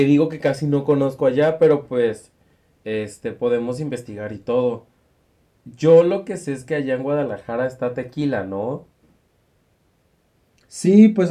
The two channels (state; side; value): identical; both; correlation 1.00